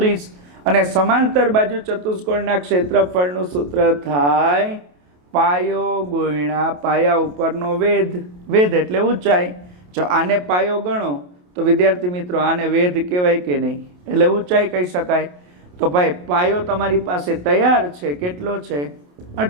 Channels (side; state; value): left; late; 28 ms